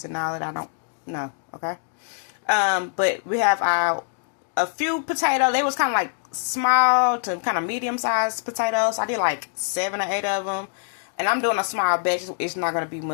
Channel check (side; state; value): right; silent; digital silence